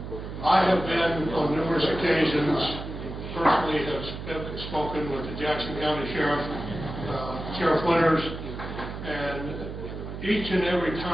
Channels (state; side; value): noise; right; hum, 8 dB below the sound